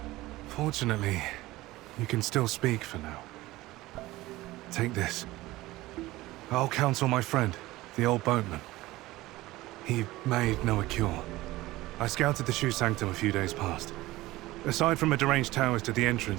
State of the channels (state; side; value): quieter; left; 18.3 dB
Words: Fortunately, you can still speak for now. Take this. I'll counsel my friend, the old boatman. He made Noah cure. I scouted the Shu Sanctum a few days past. Aside from a deranged Taoist at the